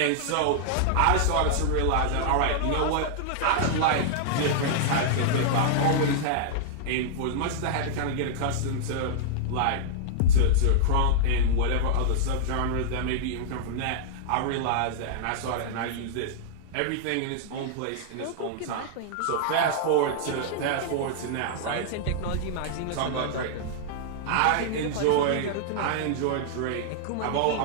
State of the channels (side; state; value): both; different; correlation -0.01